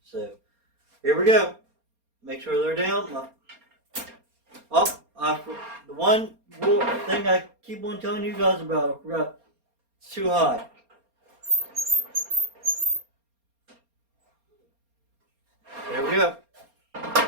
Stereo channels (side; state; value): left; late; 4.3 ms